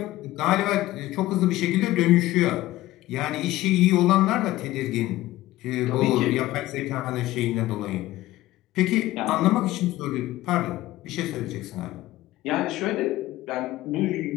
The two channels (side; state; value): right; quieter; 16.5 dB